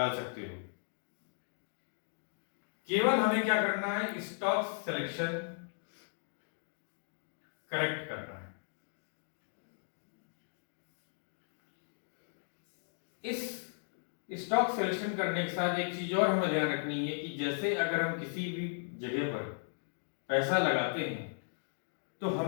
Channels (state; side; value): silent; right; digital silence